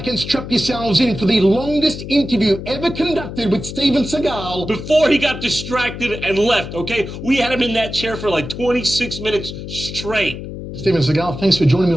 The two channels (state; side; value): noise; left; hum, 9 dB below the sound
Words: and strap yourselves in for the longest interview ever conducted with Steven Seagal. Before he got distracted and left, okay? We had him in that chair for like 26 minutes straight. Steven Seagal, thanks for joining me